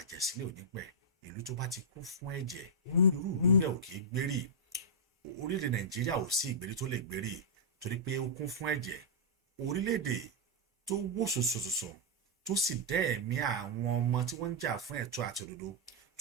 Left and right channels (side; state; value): both; normal; correlation -0.10